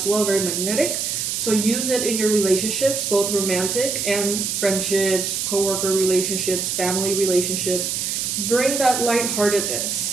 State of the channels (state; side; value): noise; right; hiss, 1 dB below the sound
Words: well, very magnetic. So use it in your relationships, both romantic and friendships, coworker relationships, family relationships. Bring that